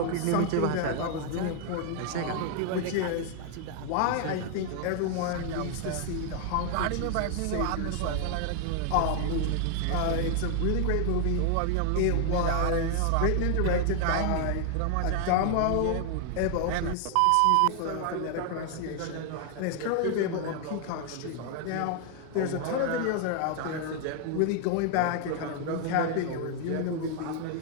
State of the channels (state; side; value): different; both; correlation 0.00